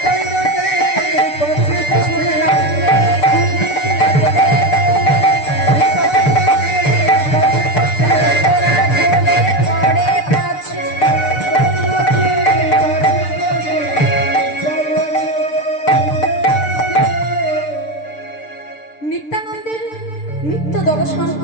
নিত্যানন্দের নৃত্য দর্শন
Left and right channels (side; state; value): right; late; 6.7 ms